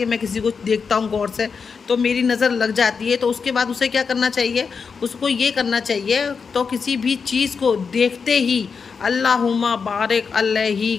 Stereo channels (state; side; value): quieter; right; 5.6 dB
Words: मैं किसी को देखता हूँ गौर से तो मेरी नज़र लग जाती है, तो उसके बाद उसे क्या करना चाहिए, उसको ये करना चाहिए तो किसी भी चीज़ को देखते ही अल्लाहुम्मा बारिक अलैहि